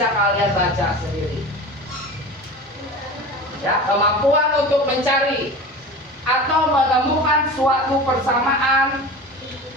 kalian baca sendiri. Ya, kemampuan untuk mencari atau menemukan suatu persamaan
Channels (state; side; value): normal; both; correlation 0.33